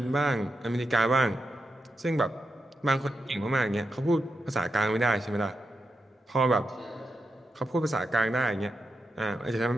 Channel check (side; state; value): both; normal; correlation 0.87